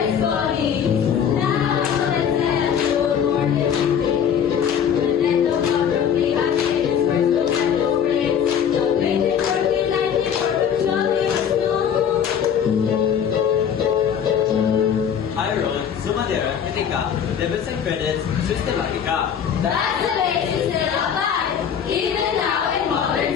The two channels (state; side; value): quieter; right; 8.2 dB